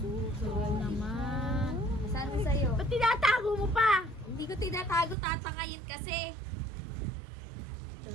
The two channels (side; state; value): left; drops out; at 5.2 s